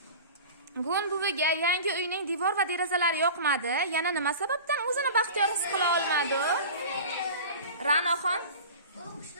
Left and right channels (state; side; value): inverted; both; correlation -0.36